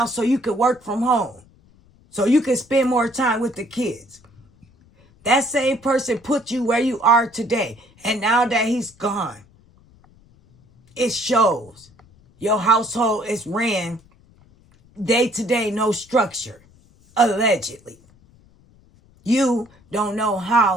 so you could work from home, so you can spend more time with the kids. That same person put you where you are today. And now that he's gone, it shows. Your household is ran day to day, no structure, allegedly. You don't know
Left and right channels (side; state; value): left; noise; rumble, 29 dB below the sound